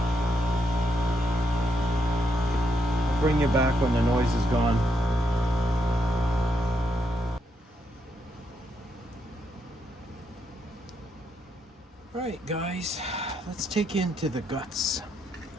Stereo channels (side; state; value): both; normal; correlation 0.79